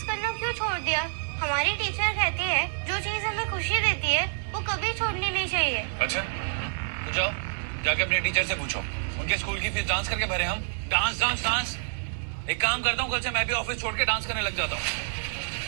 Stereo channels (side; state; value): left; silent; digital silence